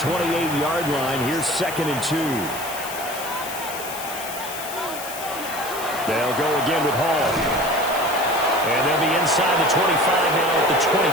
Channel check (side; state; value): left; noise; hiss, 10 dB below the sound